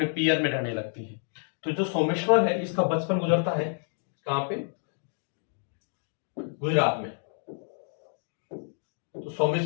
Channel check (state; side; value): silent; right; digital silence